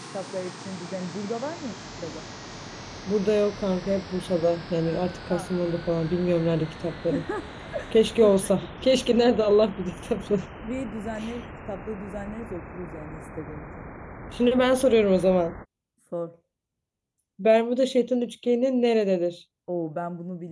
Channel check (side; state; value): both; identical; correlation 1.00